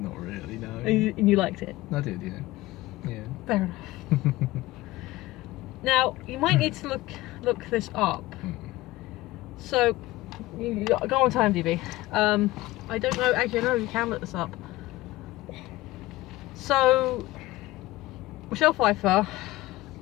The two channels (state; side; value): quieter; right; 18.3 dB